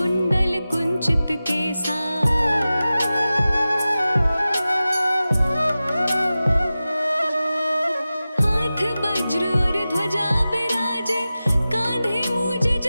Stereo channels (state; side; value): inverted; both; correlation -0.95